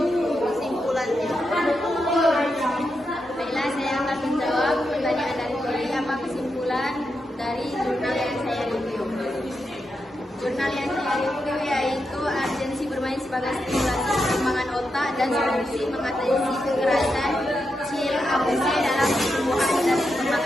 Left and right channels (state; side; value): normal; both; correlation 0.86